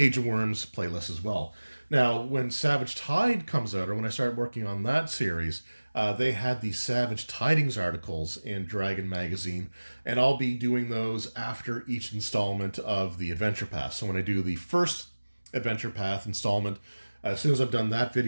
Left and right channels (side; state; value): both; inverted; correlation -1.00